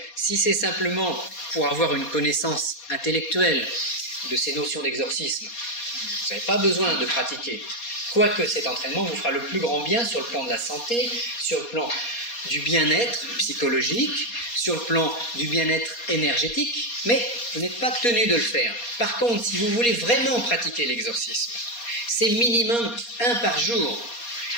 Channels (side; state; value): right; late; 4.2 ms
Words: si c'est simplement pour avoir une connaissance intellectuelle de ces notions d'exorcisme, vous n'avez pas besoin de pratiquer. Quoique cet entraînement vous fera le plus grand bien sur le plan de la santé, sur le plan du bien-être psychologique, sur le plan du bien-être énergétique, mais vous n'êtes pas tenu de le faire. Par contre, si vous voulez vraiment pratiquer l'exorcisme, c'est minimum 1 par jour.